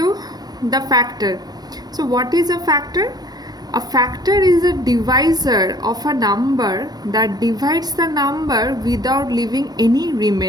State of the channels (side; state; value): left; late; 0.19 ms